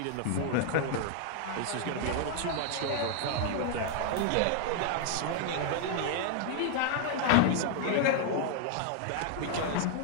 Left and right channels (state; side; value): different; both; correlation 0.00